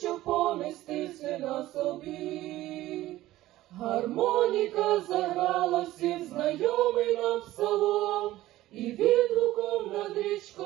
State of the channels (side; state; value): left; quieter; 15.8 dB